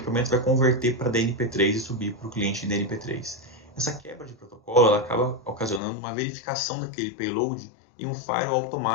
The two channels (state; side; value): drops out; right; at 5.8 s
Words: vai converter para DNP3 e subir para o cliente em DNP3. Essa quebra de protocolo ela acaba ocasionando uma verificação daquele payload e um firewall